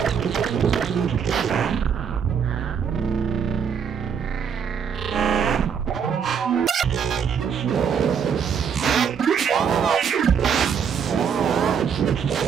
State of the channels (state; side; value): quieter; left; 7.2 dB